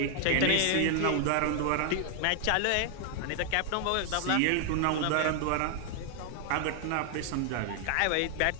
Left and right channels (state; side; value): different; both; correlation 0.00